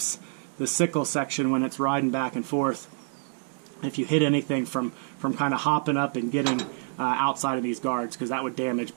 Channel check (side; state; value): left; silent; 60 dB below the other